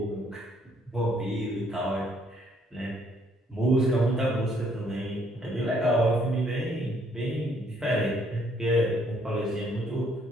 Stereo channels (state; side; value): normal; both; correlation 0.67